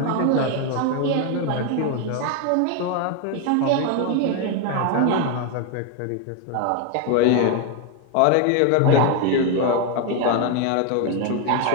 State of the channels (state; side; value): different; both; correlation 0.01